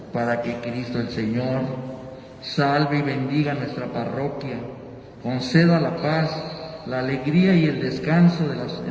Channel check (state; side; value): identical; both; correlation 1.00